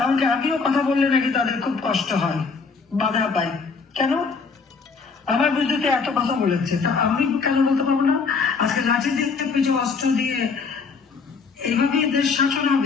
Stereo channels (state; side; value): quieter; right; 4.9 dB